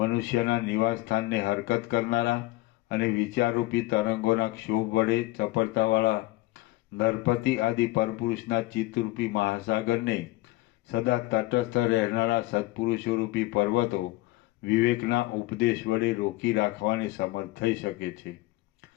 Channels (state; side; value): quieter; right; 19.2 dB